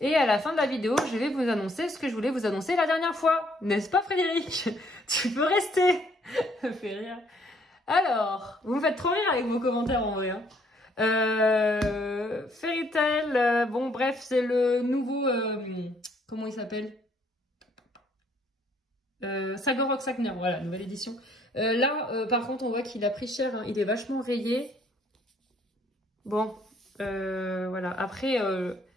à la fin de la vidéo, je vais vous annoncer ce que je voulais vous annoncer la dernière fois. N'est-ce pas Frédéric? Tu peux rester. Ça fait rire. Alors, vous me faites trop rire avec vos commentaires en vrai. Hein. Fairy Tail, bon bref, c'est le nouveau... comment il s'appelle? Sagor Sagner, voilà, nouvelle édition. Là, par contre, on voit qu'il a pris cher, hein. Il est vachement rayé. Bon, voilà. Après,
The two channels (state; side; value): normal; both; correlation 0.66